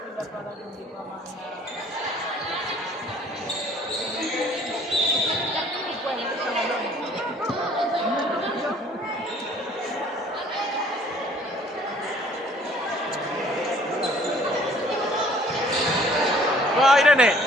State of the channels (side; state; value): both; normal; correlation 0.56